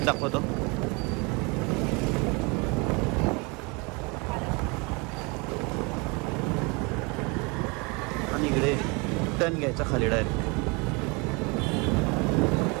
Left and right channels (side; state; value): left; quieter; 29.1 dB